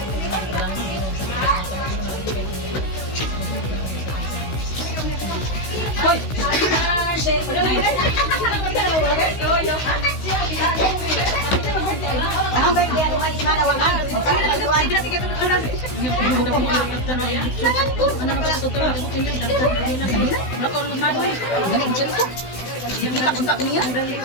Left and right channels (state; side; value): late; right; 16 ms